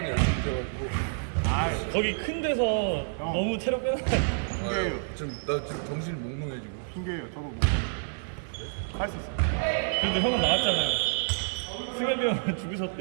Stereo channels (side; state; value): left; silent; 56 dB below the other